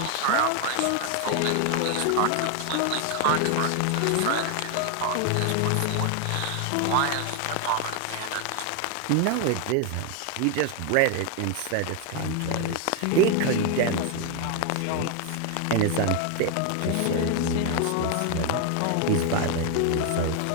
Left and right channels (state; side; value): different; both; correlation 0.01